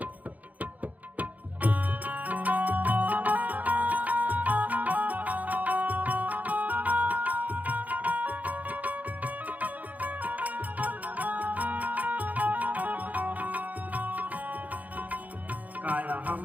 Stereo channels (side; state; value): left; late; 0.077 ms